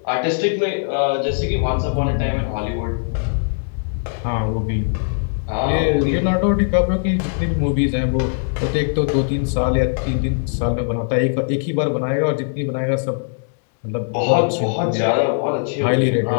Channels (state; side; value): silent; right; digital silence